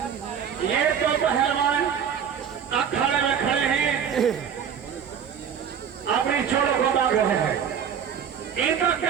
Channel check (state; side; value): quieter; left; 7.9 dB